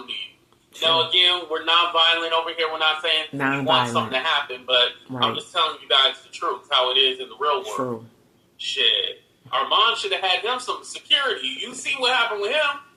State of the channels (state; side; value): identical; both; correlation 1.00